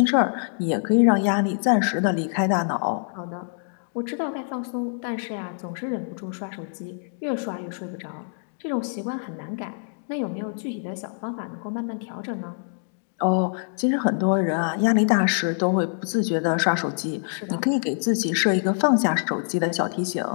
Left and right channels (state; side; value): silent; right; digital silence